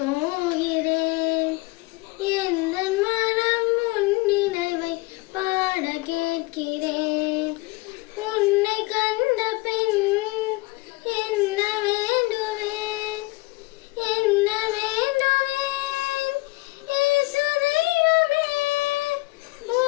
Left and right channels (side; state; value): right; quieter; 23.2 dB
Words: எந்த மனம் உன் நினைவை பாட கேட்கிறேன். உன்னை கண்ட பின் என்ன வேண்டுவேன், என்ன வேண்டுவேன்? இயேசு தெய்வமே,